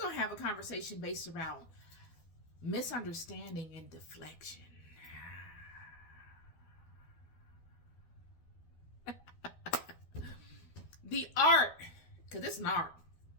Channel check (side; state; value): right; late; 12 ms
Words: going to have a conversation based around misunderstanding and deflection. The art, because it's an art,